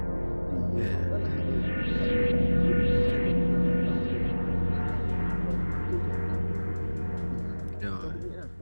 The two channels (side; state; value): both; inverted; correlation -1.00